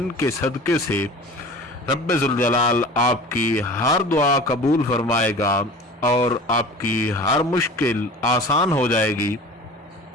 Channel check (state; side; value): normal; both; correlation 0.39